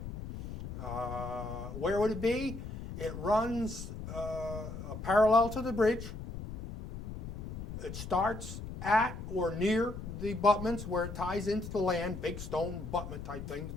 Where would it be? It runs parallel to the bridge. It starts at or near the abutments where it ties into the land, big stone abutment type thing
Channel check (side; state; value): left; noise; rumble, 9 dB below the sound